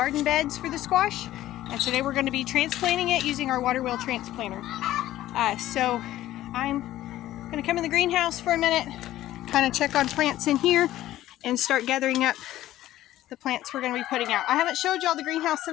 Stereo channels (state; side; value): quieter; right; 14.4 dB